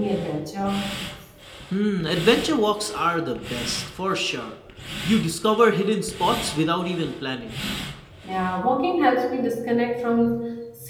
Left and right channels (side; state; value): both; identical; correlation 1.00